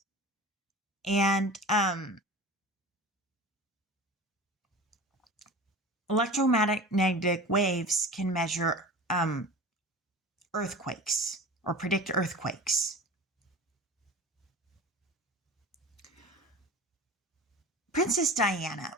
And electromagnetic waves can measure earthquakes or predict earthquakes. Princess Diana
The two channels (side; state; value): both; normal; correlation 0.35